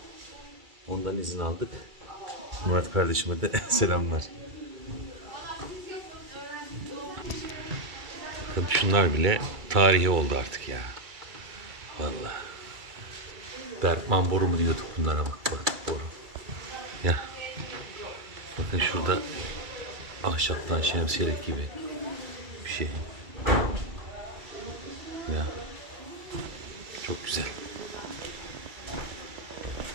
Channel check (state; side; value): late; left; 2.3 ms